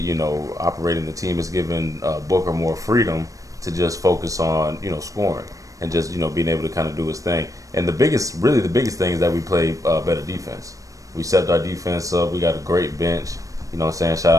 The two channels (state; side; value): late; left; 0.16 ms